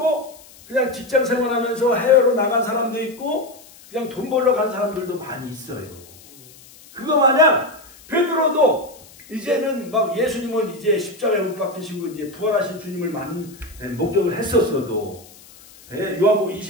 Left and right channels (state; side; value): noise; left; hiss, 23 dB below the sound